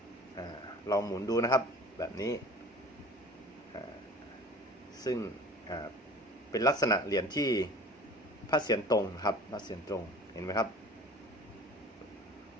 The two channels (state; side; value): normal; both; correlation 0.43